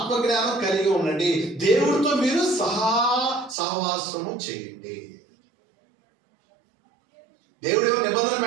జ్ఞానం కలిగి ఉండండి, దేవుడితో మీరు సహవాసము చేయండి. దేవుడేమో నిబంధన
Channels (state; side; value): drops out; left; at 3.6 s